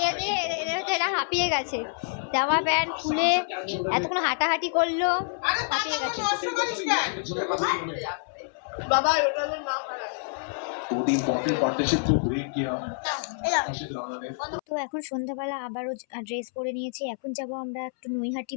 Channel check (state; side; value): silent; right; 60 dB below the other